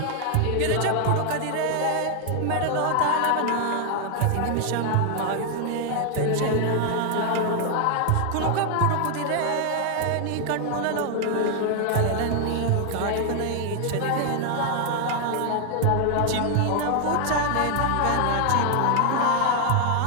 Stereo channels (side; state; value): both; different; correlation 0.00